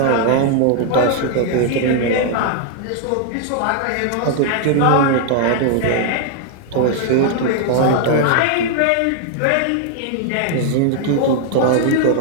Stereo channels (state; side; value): different; both; correlation 0.00